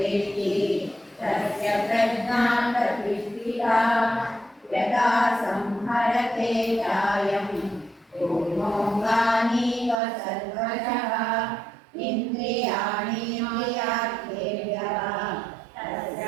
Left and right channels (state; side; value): drops out; left; at 10.0 s